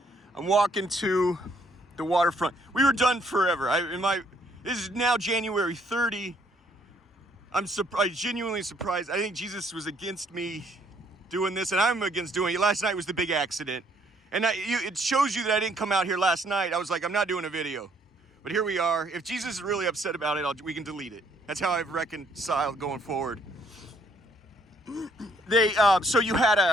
I'm walking to the waterfront. We were done forever. This is now January 30. I'm genuinely surprised. I think Jesus was against me doing this, and I'm against doing it. Last night was the big accident. And it shows you that I didn't come out here last night. I was like, I'm not doing a video. But here we are. If Jesus is really upset about it, we can delete it. That's how I've reconciled going forward. So you had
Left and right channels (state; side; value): normal; both; correlation 0.66